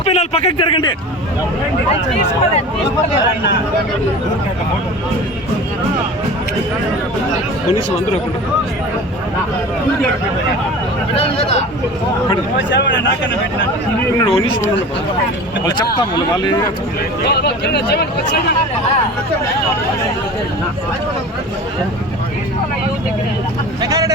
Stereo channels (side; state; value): both; normal; correlation 0.37